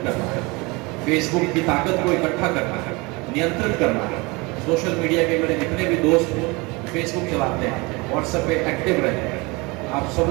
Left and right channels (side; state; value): left; quieter; 25.8 dB